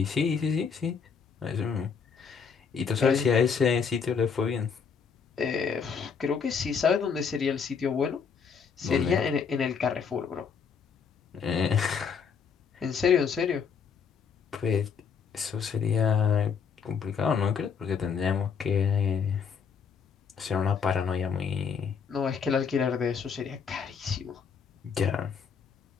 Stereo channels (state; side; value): quieter; right; 6.3 dB